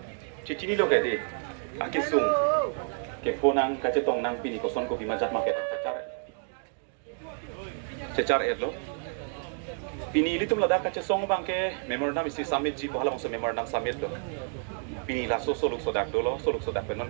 Cici ni lo ke di, akisung, ke ponang kaca tong nang pini koson kopi majat maket cecar lo, pini ini tuh meladak kaca song bang ke memorandum isi summit ji pohala masa memorandum summit lo, pini laso soluk sodak penon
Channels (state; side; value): silent; left; 58 dB below the other